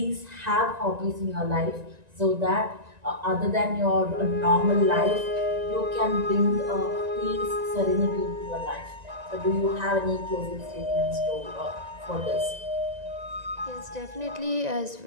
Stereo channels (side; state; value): left; late; 1.9 ms